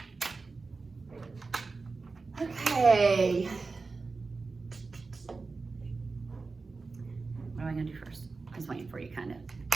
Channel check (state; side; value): quieter; left; 4.1 dB